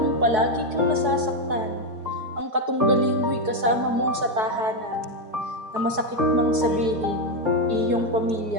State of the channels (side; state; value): left; late; 4.7 ms